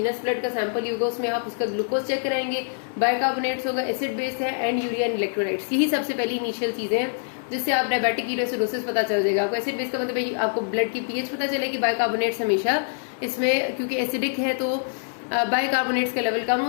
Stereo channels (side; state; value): right; silent; digital silence